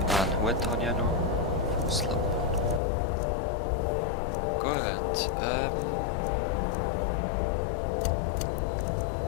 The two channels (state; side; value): drops out; right; at 2.8 s